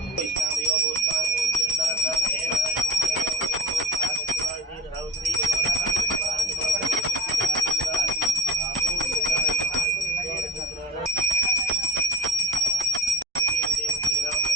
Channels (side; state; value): both; normal; correlation 0.38